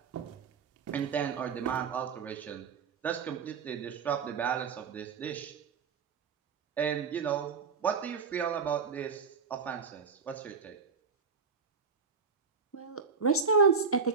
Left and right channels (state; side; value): quieter; left; 5.5 dB